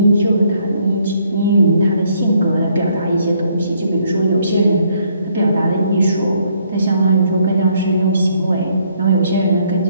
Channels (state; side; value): inverted; both; correlation -0.69